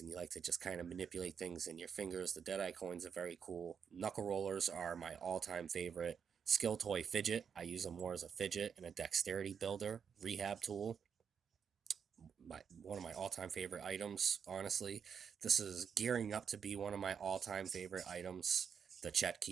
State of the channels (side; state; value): left; quieter; 7.0 dB